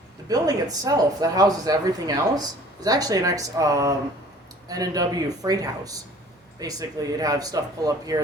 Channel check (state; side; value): normal; both; correlation 0.50